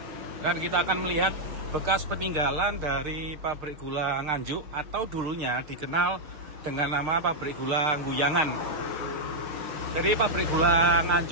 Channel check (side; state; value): left; late; 6.6 ms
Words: Dan kita akan melihat bekas peninggalan dari pabrik gula Nganjuk, atau dulunya dikenal dengan nama pabrik gula Nguyangan. Jadi pabrik gula